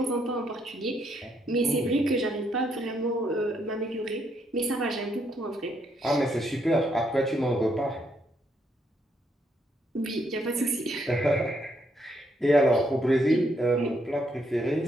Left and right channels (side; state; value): both; normal; correlation 0.75